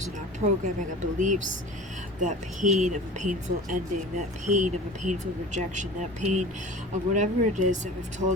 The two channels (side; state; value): both; normal; correlation 0.38